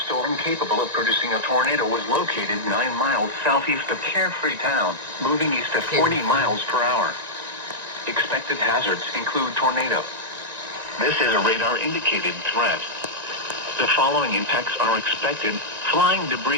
capable of producing a tornado was located 9 miles southeast of Carefree Town, moving east at 40 miles per hour. Expected hazards include tornado. This is a radar-indicated threat. The following impacts are expected. Flying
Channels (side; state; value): left; late; 1.9 ms